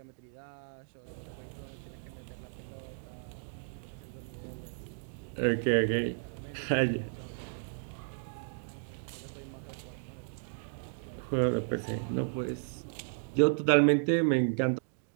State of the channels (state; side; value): silent; left; digital silence